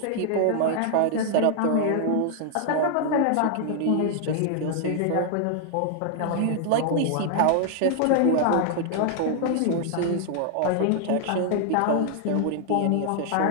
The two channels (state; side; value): different; both; correlation 0.00